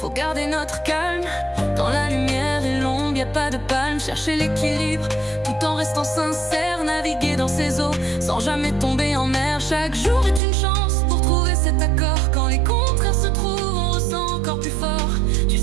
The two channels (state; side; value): drops out; left; at 10.4 s